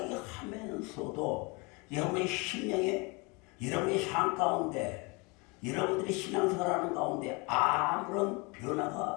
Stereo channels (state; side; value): quieter; right; 28.6 dB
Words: 하면서도 여러분의 심령에 여러분의 삶 가운데 여러분들이 신앙생활하는 가운데 아무런